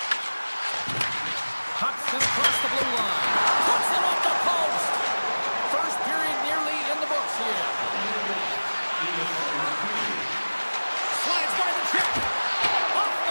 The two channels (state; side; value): inverted; both; correlation -1.00